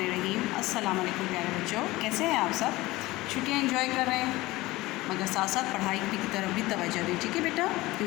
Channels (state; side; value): quieter; right; 19.4 dB